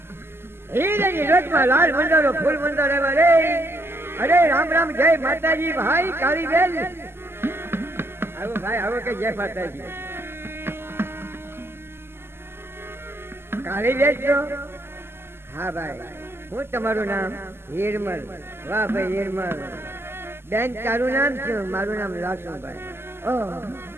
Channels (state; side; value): late; left; 0.12 ms